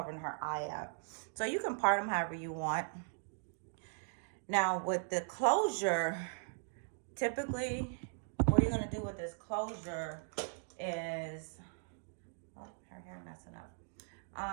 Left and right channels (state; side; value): silent; left; digital silence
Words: her eye up. So you can part them however you want. Now with the closure, typically what you're going to do with this closure is, oh, her hair messing up.